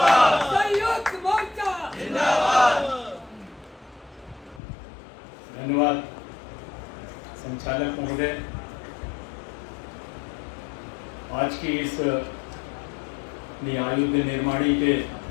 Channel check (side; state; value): right; drops out; at 4.6 s